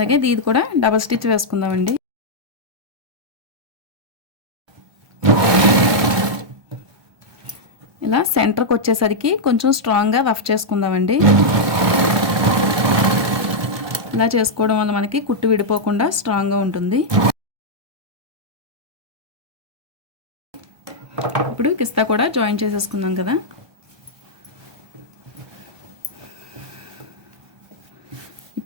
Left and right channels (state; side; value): late; left; 1.2 ms